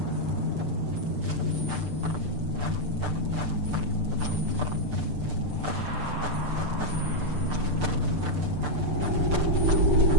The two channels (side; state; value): left; late; 6.7 ms